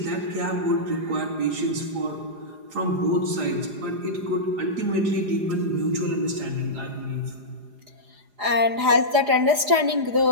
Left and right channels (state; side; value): late; left; 4.9 ms